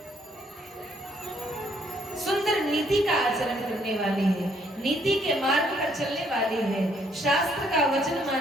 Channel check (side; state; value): both; normal; correlation 0.68